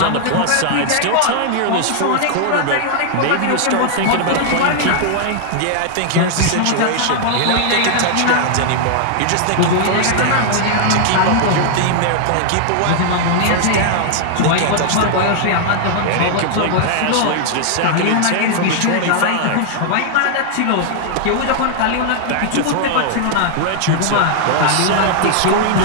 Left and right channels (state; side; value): different; both; correlation -0.01